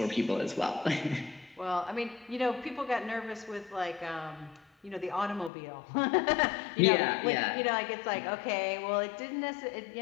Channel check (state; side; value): drops out; right; at 5.5 s